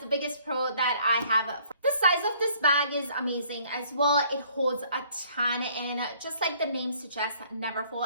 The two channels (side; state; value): both; inverted; correlation -0.61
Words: biggest pro that I have. The size of this bag is amazing as well. It holds a ton, and just like the name suggests,